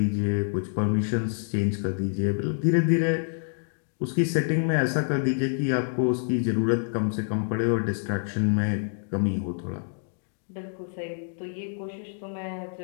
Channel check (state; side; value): silent; right; digital silence